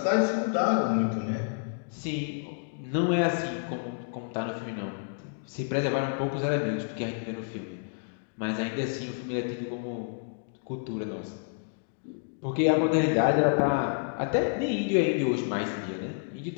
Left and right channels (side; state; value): right; silent; digital silence